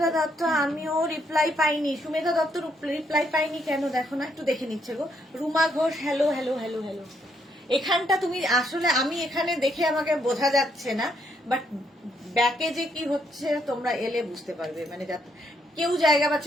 দত্ত, আমিও রিপ্লাই পাইনি। সুমেধা দত্ত রিপ্লাই পাইনি কেন দেখো না, একটু দেখে নিচ্ছে গো। Ruma Ghosh, hello hello hello hello. এখানটা তুমি আসলে, আমি এখানে দেখে আমাকে বোঝা যাচ্ছে না, বাট ব্যাকে যে কি হচ্ছে তোমরা এলে বুঝতে পারবে। মানে কেউ জায়গা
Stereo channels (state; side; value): normal; both; correlation 0.74